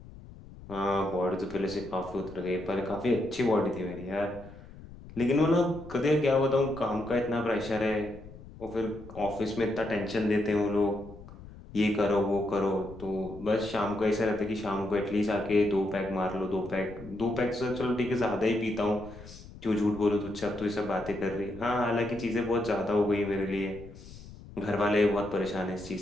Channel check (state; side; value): noise; left; rumble, 17 dB below the sound